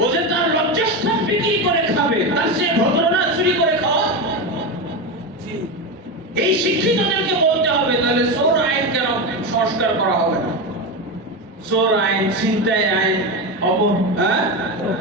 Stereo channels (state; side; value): normal; both; correlation 0.16